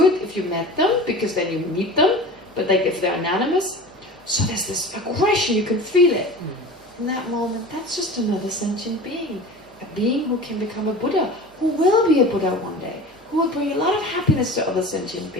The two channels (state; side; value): normal; both; correlation 0.36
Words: it if you met them, because then you meet them, but like if they're anonymous. So there's this aggression, you can feel it. In that moment, that's just another sentient being. A being who can become a Buddha, who will be a Buddha one day, who will bring a lot of happiness to other sentient